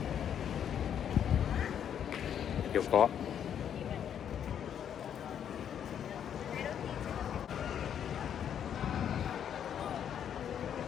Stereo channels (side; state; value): right; quieter; 9.0 dB